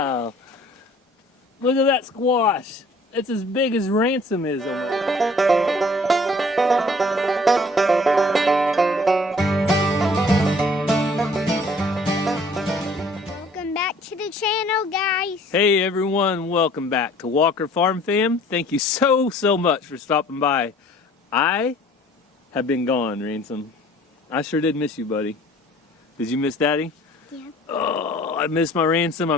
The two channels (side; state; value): both; normal; correlation 0.54